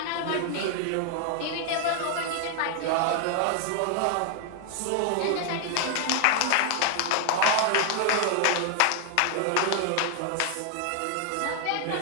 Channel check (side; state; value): both; different; correlation 0.00